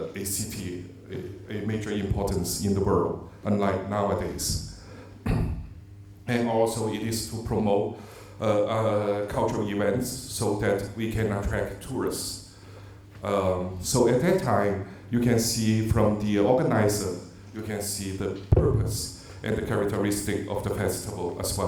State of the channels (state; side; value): identical; both; correlation 1.00